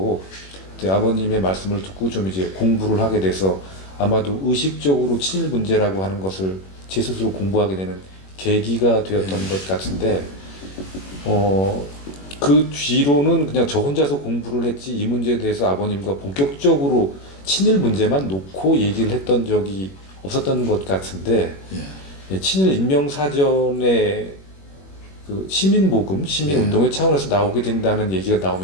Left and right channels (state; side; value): late; right; 21 ms